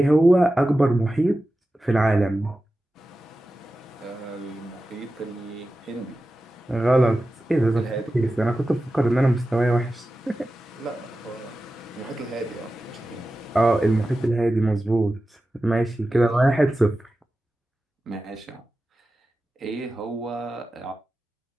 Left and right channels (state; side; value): normal; both; correlation 0.94